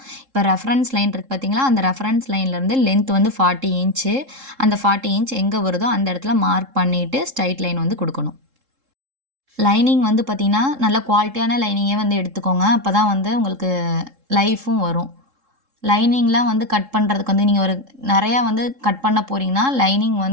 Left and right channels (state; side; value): late; left; 3.7 ms